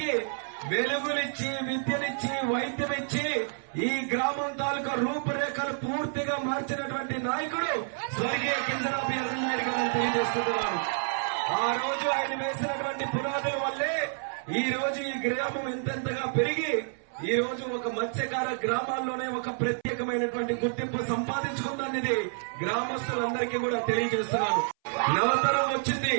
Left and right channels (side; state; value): left; silent; 59 dB below the other